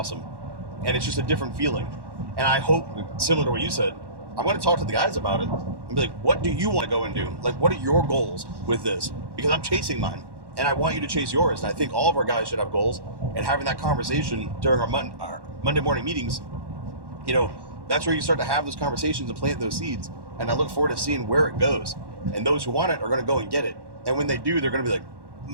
And it's just a different feeling. And I hope, similar to what you said, I'm going to talk to the guys about it and be like, what do you want to go and do? What are your goals with this? Because I'm chasing mine. and I want you to chase yours. And I think all of our guys should have goals, and having that conversation during our Monday morning meetings, that's where you start to have those conversations and plant those seeds. And I look forward to seeing where it goes. And those who want it are going to go and get it. And when they do, they're going to be like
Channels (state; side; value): late; left; 1.1 ms